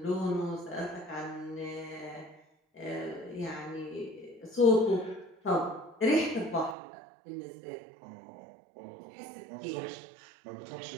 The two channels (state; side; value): drops out; left; at 6.8 s